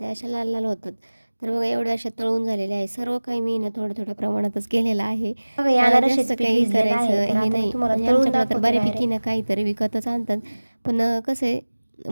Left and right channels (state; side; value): inverted; both; correlation -1.00